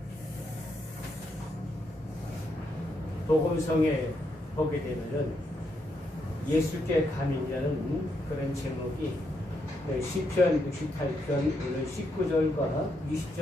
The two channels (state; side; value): normal; both; correlation 0.79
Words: 복음성에 보게 되면은 예수께 감인이라는 그런 제목이 시편 68편 오늘 19절과